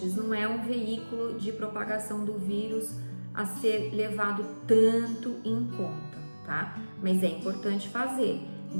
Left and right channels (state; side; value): inverted; both; correlation -1.00